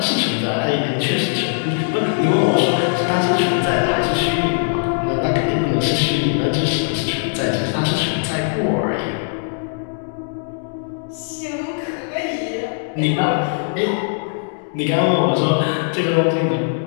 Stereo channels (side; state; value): right; silent; digital silence